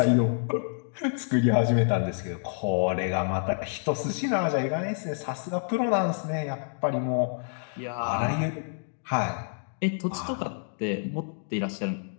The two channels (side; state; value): right; silent; digital silence